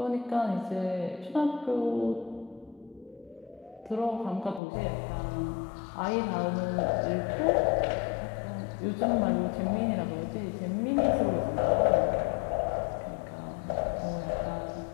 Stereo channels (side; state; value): right; drops out; at 4.6 s